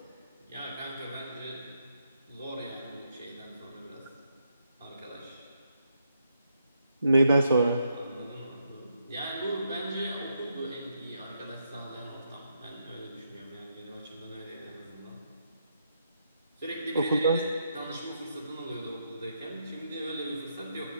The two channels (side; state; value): both; inverted; correlation -0.79